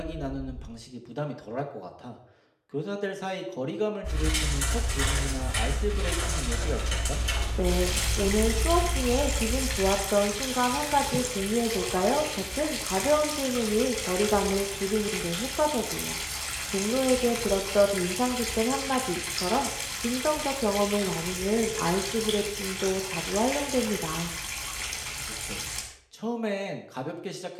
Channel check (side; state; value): both; identical; correlation 1.00